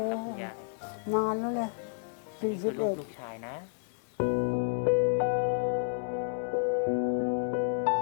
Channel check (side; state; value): right; silent; 57 dB below the other